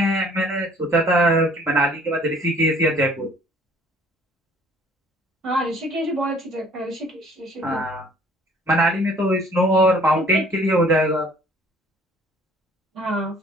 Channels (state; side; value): normal; both; correlation 0.56